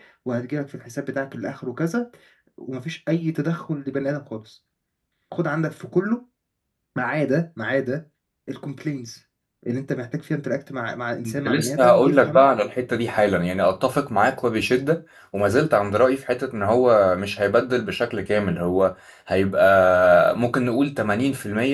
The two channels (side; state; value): both; identical; correlation 1.00